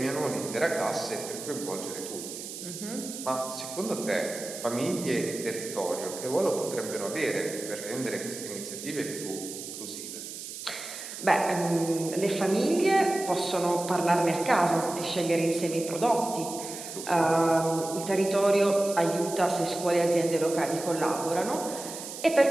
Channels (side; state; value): right; noise; hiss, 10 dB below the sound